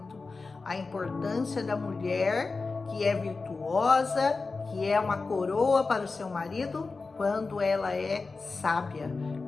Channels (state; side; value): quieter; right; 4.0 dB